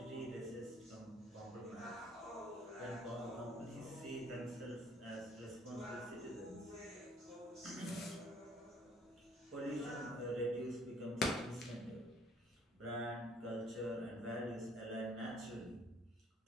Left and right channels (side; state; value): both; normal; correlation 0.60